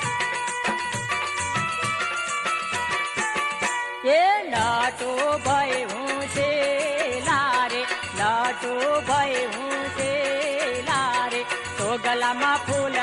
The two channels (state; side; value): identical; both; correlation 1.00